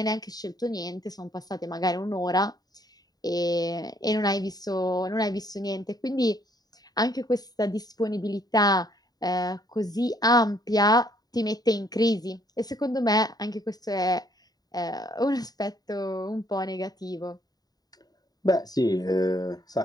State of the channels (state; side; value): late; right; 0.19 ms